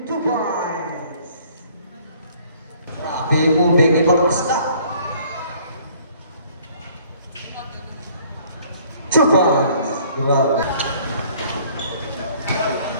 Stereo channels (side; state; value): both; inverted; correlation -0.58